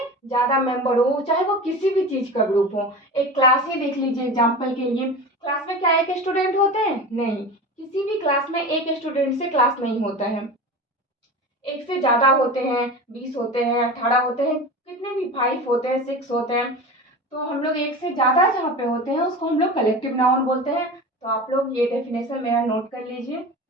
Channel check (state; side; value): normal; both; correlation 0.31